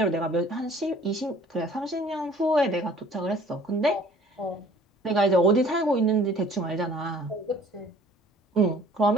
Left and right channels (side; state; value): both; normal; correlation 0.52